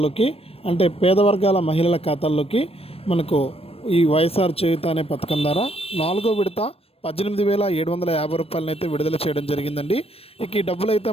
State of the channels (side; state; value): right; late; 0.28 ms